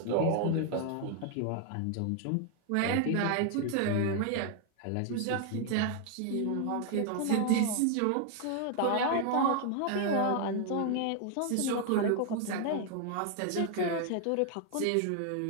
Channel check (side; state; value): both; different; correlation 0.00